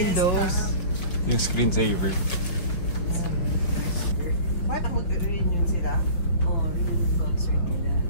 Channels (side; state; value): right; late; 6.1 ms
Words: Yung screensaver. Bakit mag-reunion sila? Oo, reunion concert nila.